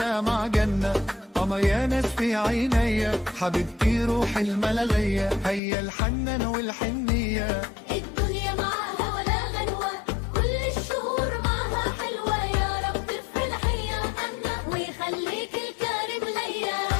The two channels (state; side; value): drops out; right; at 5.6 s